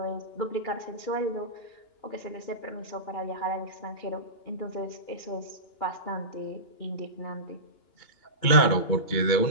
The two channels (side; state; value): right; late; 2.9 ms